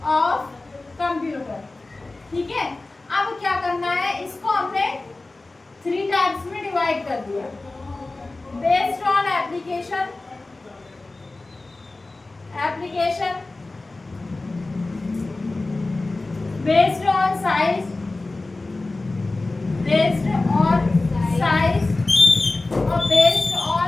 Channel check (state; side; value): quieter; right; 3.2 dB